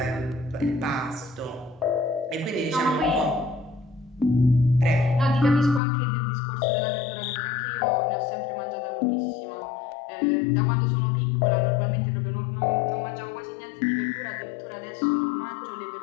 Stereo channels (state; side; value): drops out; right; at 5.8 s